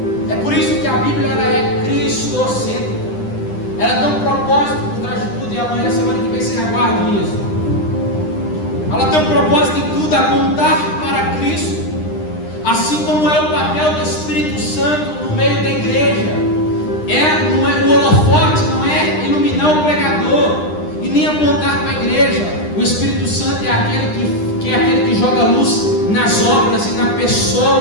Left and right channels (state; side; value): late; right; 9.9 ms